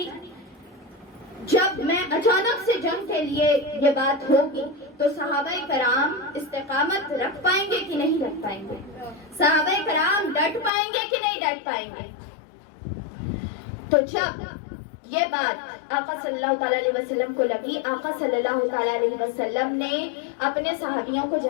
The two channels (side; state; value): right; drops out; at 10.7 s